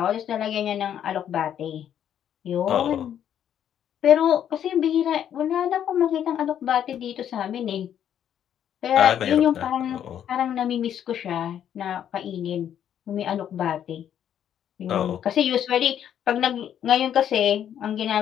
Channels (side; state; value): right; quieter; 9.8 dB